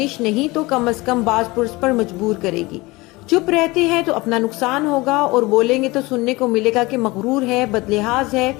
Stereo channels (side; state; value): right; quieter; 22.2 dB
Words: नहीं तो कम से कम बाज पुरुष पर मजबूर करेगी। चुप रहते हैं तो अपना नुकसान होगा और बोलेंगे तो सुनने को मिलेगा कि मगरूर है, बदलिहाज है,